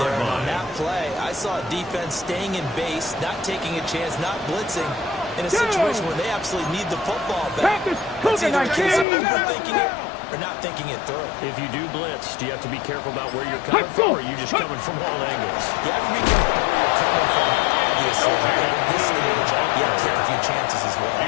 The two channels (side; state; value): right; drops out; at 9.1 s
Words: there. And on line. that play, I saw a defense staying in base, not taking a chance, not blitzing, in a situation where they absolutely need the football back. Panthers, That's either a case of Cougar 19. overthinking it or not thinking it through. If you do blitz, do you have to be careful about where you're coming from, or are you just coming from all angles? You have to be careful where you're coming from, obviously. But at this stage, you have to take a few chances as well.